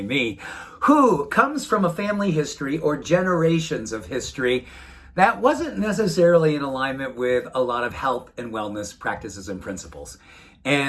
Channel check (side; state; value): both; identical; correlation 1.00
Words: me, who comes from a family history or generations of history that wasn't necessarily in alignment with a lot of health and wellness practices and principles.